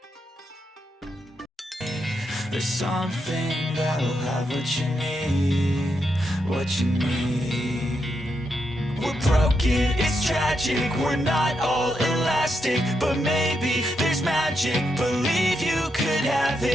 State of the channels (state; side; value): normal; both; correlation 0.82